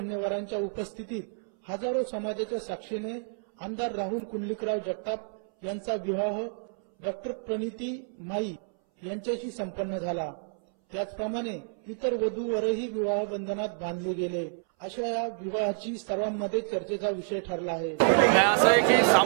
उपस्थितीत हजारो समाजाच्या साक्षीने आमदार राहुल कुंडलिकराव जगताप यांचा विवाह डॉक्टर प्रणिती माई यांच्याशी संपन्न झाला। त्याचप्रमाणे इतर वधूवरही विवाह बंधनात बांधले गेले। अशा या विवाहाची सर्वांमध्ये चर्चेचा विषय ठरला आहे। असं आहे की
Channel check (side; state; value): left; silent; 59 dB below the other